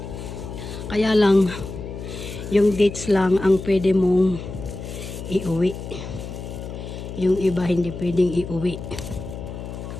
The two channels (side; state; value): left; noise; hum, 9 dB below the sound